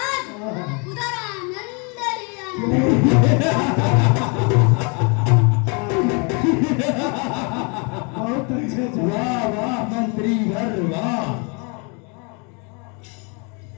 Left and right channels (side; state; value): right; quieter; 33.8 dB